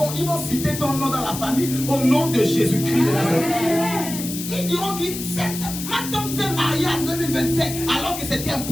citer ton nom dans la famille au nom de Jésus-Christ de Nazareth. Ils diront que ma tante s'est mariée en 2025 alors que c'était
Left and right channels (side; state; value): left; noise; hiss, 8 dB below the sound